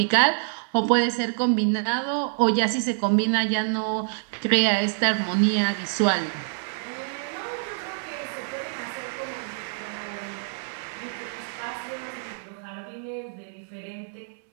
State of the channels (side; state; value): left; silent; 61 dB below the other